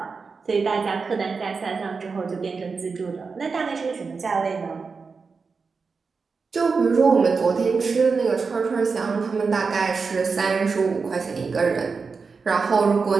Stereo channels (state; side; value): quieter; left; 4.9 dB